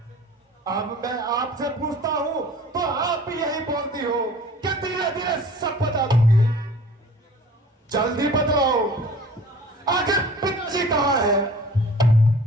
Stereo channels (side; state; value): both; normal; correlation 0.46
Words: अब मैं आपसे पूछता हूं तो आप भी यही बोलती हो कि धीरे धीरे सब बता दूंगी। जल्दी बतलाओ, आखिर पिताजी कहाँ है?